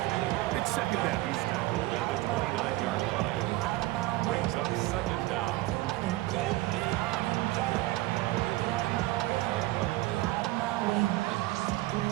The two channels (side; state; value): left; quieter; 18.4 dB